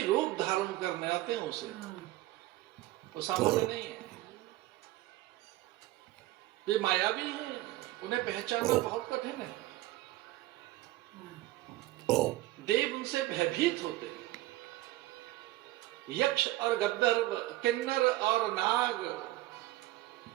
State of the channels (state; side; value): quieter; left; 17.4 dB